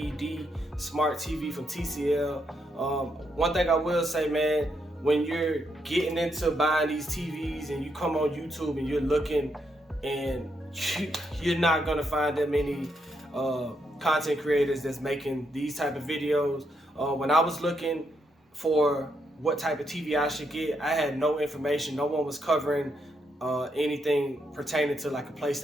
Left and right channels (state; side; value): normal; both; correlation 0.79